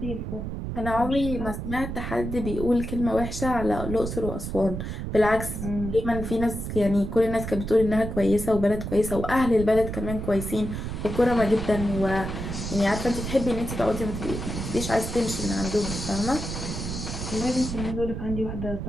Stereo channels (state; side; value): noise; right; rumble, 5 dB below the sound